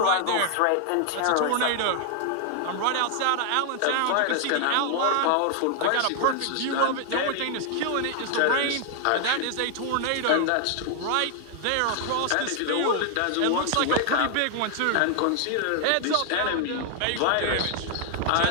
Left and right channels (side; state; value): both; different; correlation 0.00